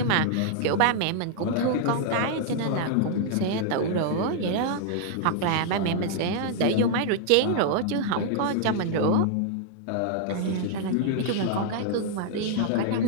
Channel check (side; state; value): both; different; correlation -0.01